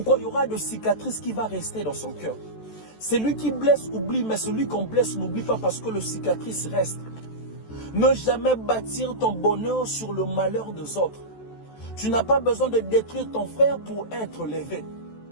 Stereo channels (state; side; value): late; right; 14 ms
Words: Il y aura de cicatrices qui vont rester dans son cœur. Celui qui blesse oublie, mais celui qu'on blesse n'oublie pas parce que le cicatrice reste. Ne jamais bâtir ton bonheur sur le malheur des autres. Tu n'as pas besoin de détruire ton frère pour être levé.